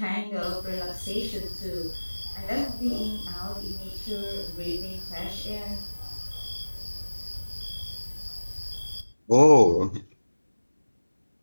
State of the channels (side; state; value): both; inverted; correlation -1.00